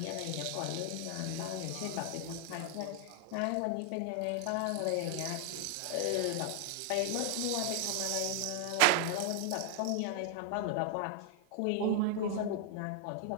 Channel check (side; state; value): both; different; correlation 0.00